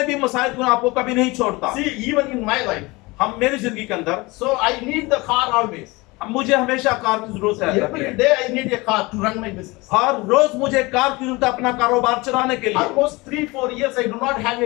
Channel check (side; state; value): right; quieter; 23.4 dB